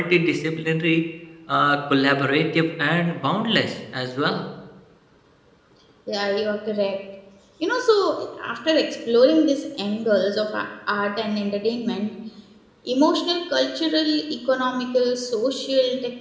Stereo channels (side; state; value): both; identical; correlation 1.00